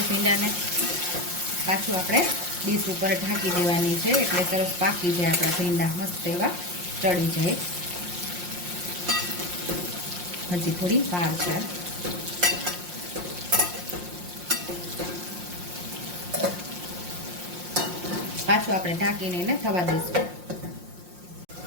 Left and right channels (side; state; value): left; late; 5.6 ms